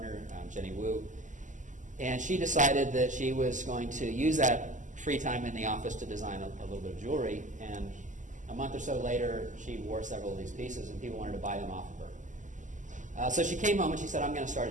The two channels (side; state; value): left; late; 0.37 ms